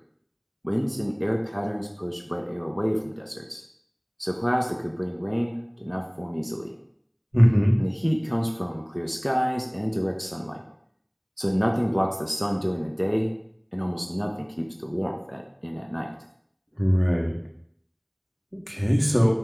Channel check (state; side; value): identical; both; correlation 1.00